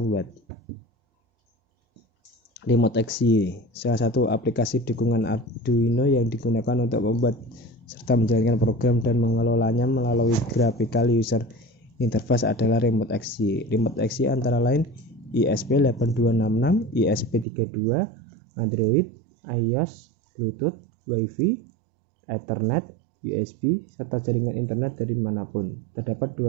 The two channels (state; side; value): drops out; left; at 17.4 s